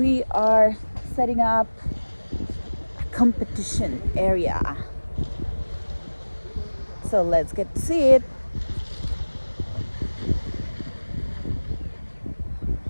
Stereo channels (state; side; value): inverted; both; correlation -1.00